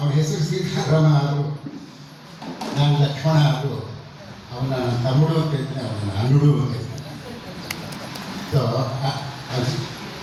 ಹೆಸರು ಸೀತಾರಾಮ ಆದರು, ನಾನು ಲಕ್ಷ್ಮಣ ಆದರು, ಅವನ ತಮ್ಮಡು ಅಂತ ಹೇಳ್ತೀನಿ, ಅವನ ಅನ್ನುಡು ಅಂತ ಹೇಳ್ತಾನೆ. ಸೊ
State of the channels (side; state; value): both; identical; correlation 1.00